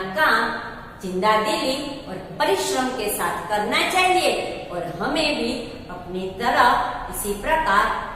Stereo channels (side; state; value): both; identical; correlation 1.00